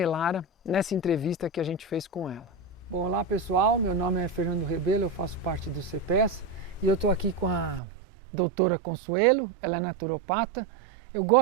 nessa entrevista que a gente fez com ela. Bom, olá pessoal, meu nome é Fernando Rebelo, eu faço parte do CPES e eu estou aqui com a doutora Consuelo, ela é naturopata. Eu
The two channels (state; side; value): drops out; left; at 7.8 s